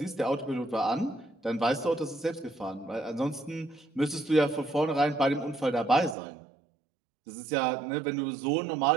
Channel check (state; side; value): drops out; left; at 6.2 s